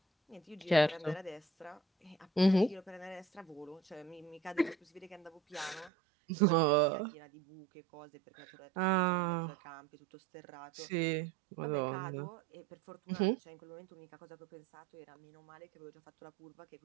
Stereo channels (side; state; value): left; drops out; at 5.9 s